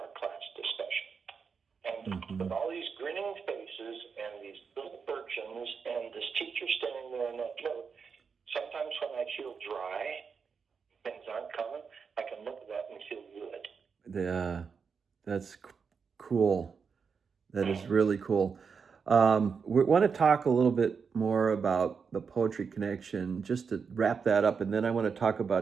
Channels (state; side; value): quieter; left; 5.8 dB